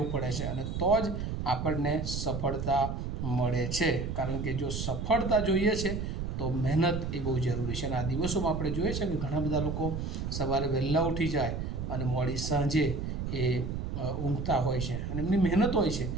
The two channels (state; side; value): noise; right; rumble, 3 dB below the sound